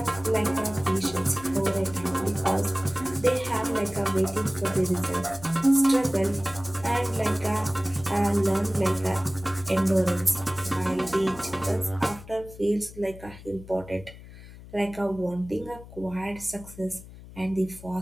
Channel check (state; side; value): noise; left; hum, 17 dB below the sound